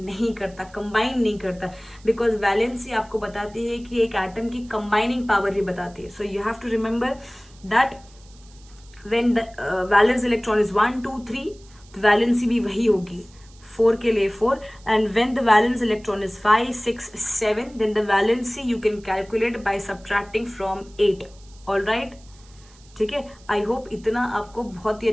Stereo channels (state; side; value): noise; right; hiss, 27 dB below the sound